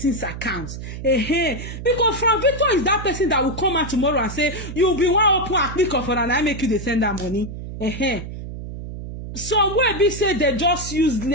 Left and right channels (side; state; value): right; noise; hum, 9 dB below the sound